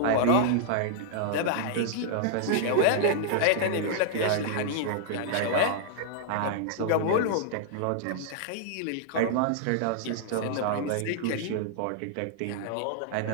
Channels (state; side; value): different; both; correlation -0.01